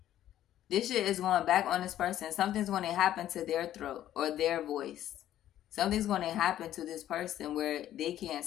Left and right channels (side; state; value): right; quieter; 12.2 dB